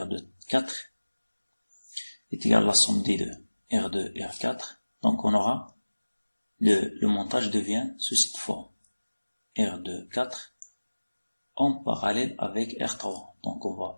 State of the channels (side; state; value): both; inverted; correlation -1.00